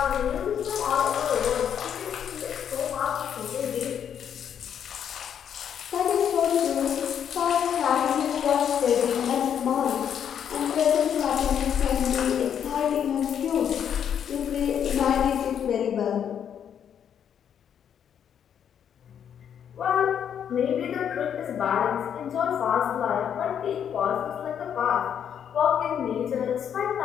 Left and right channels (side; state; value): right; quieter; 8.6 dB